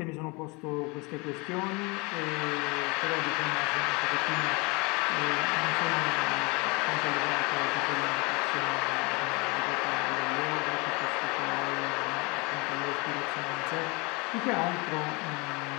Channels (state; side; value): quieter; right; 28.1 dB